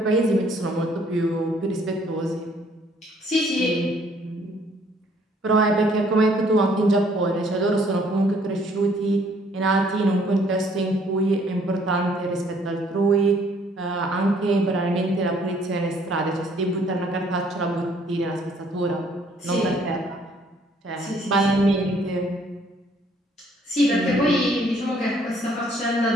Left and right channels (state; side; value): normal; both; correlation 0.63